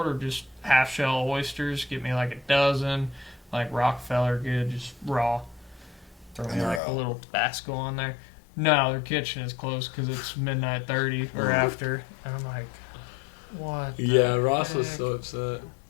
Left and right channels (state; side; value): drops out; right; at 6.8 s